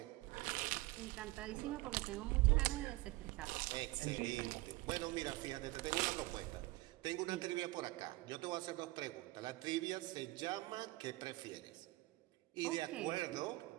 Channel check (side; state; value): left; quieter; 20.6 dB